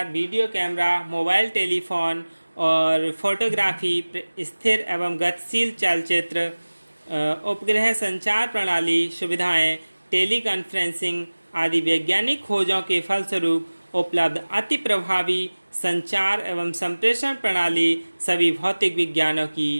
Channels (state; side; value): inverted; both; correlation -1.00